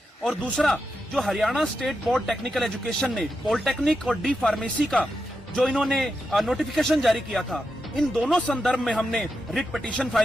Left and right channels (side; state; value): both; normal; correlation 0.87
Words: और दूसरा जो Haryana state board technical education ने पॉलिटेक्निक और डी फार्मेसी का जो इन्होंने नोटिफिकेशन जारी किया था, इन दोनों संदर्भ में हमने रिट पिटीशन